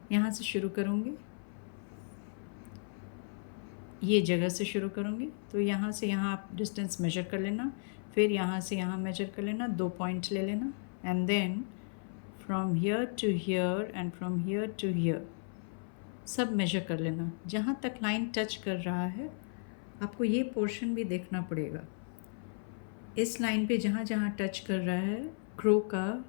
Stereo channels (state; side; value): silent; right; 55 dB below the other